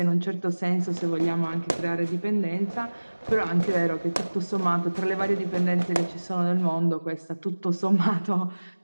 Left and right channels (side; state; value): both; inverted; correlation -1.00